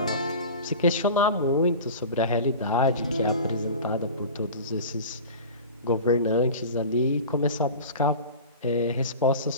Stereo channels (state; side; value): inverted; both; correlation -0.35